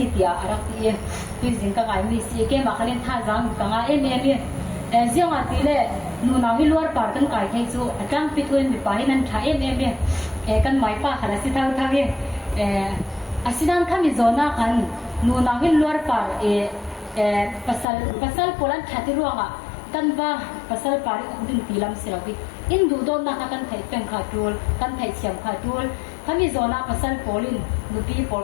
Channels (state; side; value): drops out; right; at 17.9 s